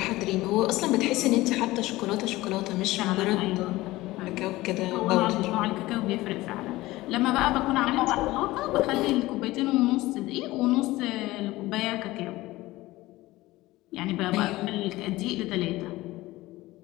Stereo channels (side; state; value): right; quieter; 18.5 dB